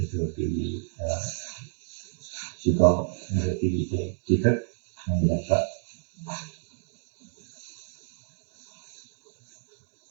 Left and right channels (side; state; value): left; silent; digital silence